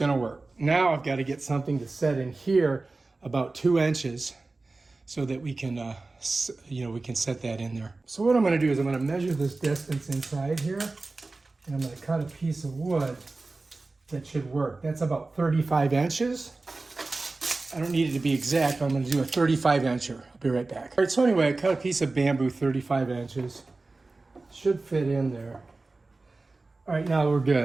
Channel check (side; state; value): left; quieter; 3.4 dB